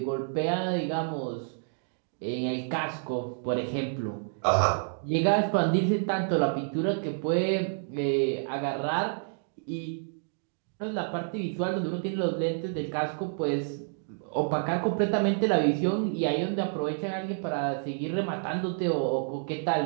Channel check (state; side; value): silent; left; digital silence